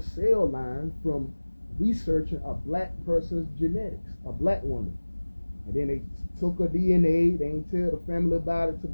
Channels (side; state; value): both; inverted; correlation -1.00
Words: line from researching a black person's genetics, a black woman. And then they took her DNA. They ain't tell the family about it till